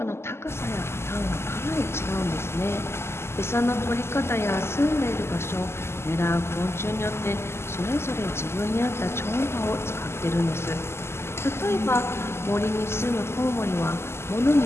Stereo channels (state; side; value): late; right; 0.12 ms